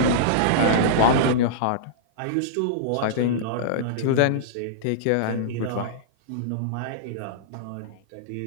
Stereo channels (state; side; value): different; both; correlation -0.03